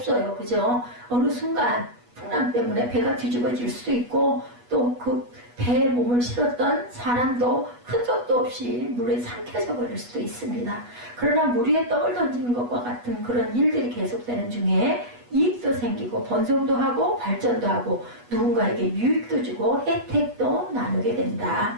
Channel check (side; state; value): left; late; 8.2 ms